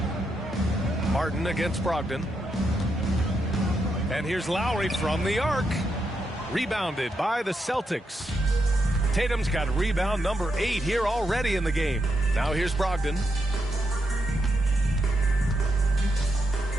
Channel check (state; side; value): normal; both; correlation 0.82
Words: Martin against Brogdon. And here's Lowry from the arc. Rebounded by the Celtics. Tatum's got rebound number 8 here already in the game. Now here's Brogdon.